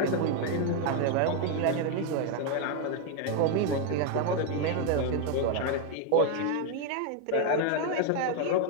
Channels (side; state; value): both; different; correlation 0.01